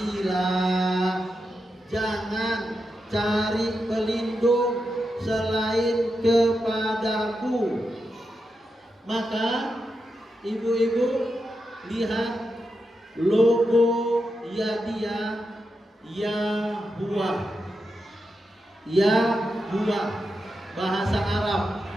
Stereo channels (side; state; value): both; normal; correlation 0.87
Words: Jangan cari pelindung selain kepadaku. Maka ibu-ibu lihat logo Yadia Yahuwah. Yahuwah bahasa Arab,